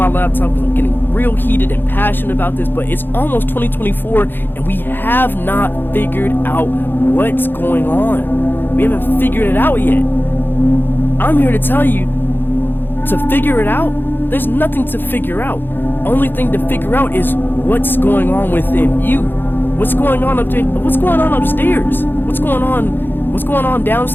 laptop because I'm getting real heated and passionate about this, but it's almost 2024, and we have not figured out what's going on. We haven't figured it out yet. I'm here to tell you to figure it out. There's nothing to figure out. Only thing to figure out is what's going on within you. What's going on what's going on upstairs? What's going on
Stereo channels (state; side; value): late; right; 0.098 ms